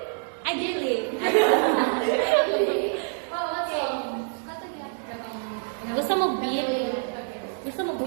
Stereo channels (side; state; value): left; silent; 61 dB below the other